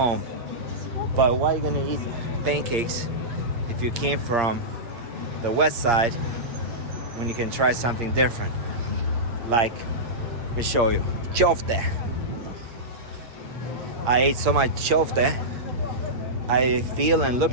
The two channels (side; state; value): left; late; 8.6 ms